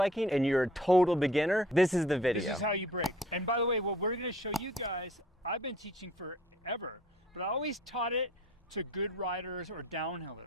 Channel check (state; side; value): normal; both; correlation 0.53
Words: and you're a total beginner, this is the video. This is how you brake. And by the way, what we're gonna show you guys, I've been teaching forever, but I always taught it to good riders or